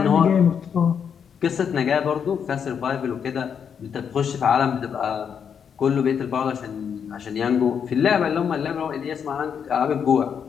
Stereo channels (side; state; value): right; quieter; 7.4 dB